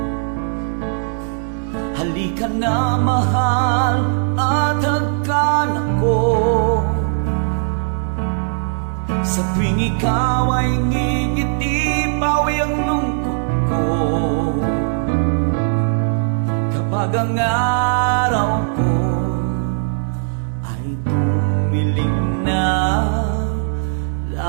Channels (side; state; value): left; silent; digital silence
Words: Halika na, mahal, at hagkan ako. Sa tuwing ikaw ay ngingiti, pawi ang lungkot ko. Kapag ang araw ko ay dumilim na,